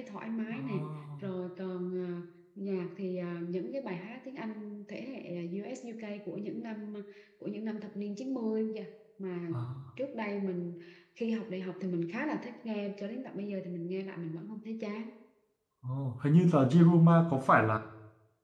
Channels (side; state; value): both; identical; correlation 1.00